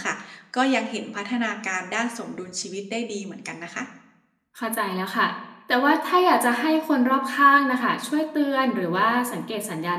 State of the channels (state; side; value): identical; both; correlation 1.00